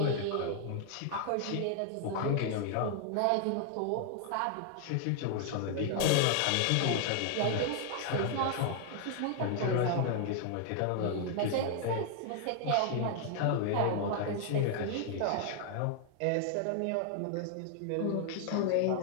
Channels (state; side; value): different; both; correlation 0.00